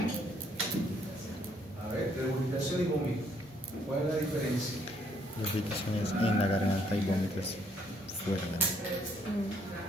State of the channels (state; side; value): normal; both; correlation 0.67